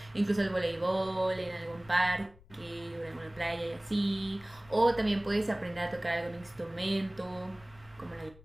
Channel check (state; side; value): noise; left; rumble, 24 dB below the sound